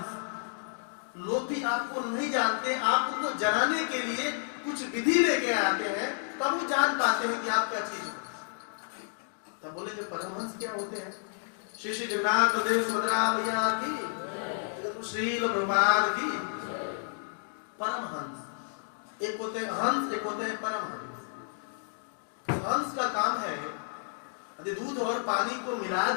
लोग भी आपको नहीं जानते, आप उनको जनाने के लिए कुछ विधि लेके आते हैं, तब वो जान पाते हैं कि आप क्या चीज हो। तब बोले जो परमहंस क्या होते हैं? श्री श्री जगन्नाथ देव सुभद्रा मैया की, श्री प्रभुपाद की। परमहंस एक होते हैं हंस, एक होते हैं परमहंस। हंस का काम है यदि दूध और पानी को मिला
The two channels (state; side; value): silent; right; digital silence